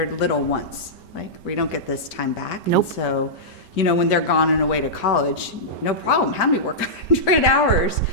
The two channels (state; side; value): late; right; 5.2 ms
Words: little once. Like, we don't get this time back. Nope. And so, you know, when they're gone and away to college, no problem. Have me work 100 hours,